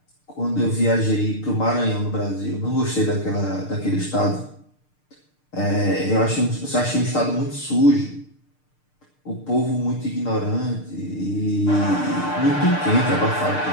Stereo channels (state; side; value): late; right; 6.6 ms